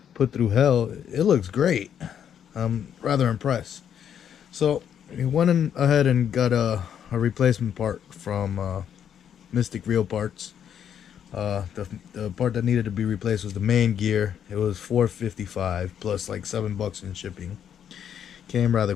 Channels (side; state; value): right; quieter; 8.9 dB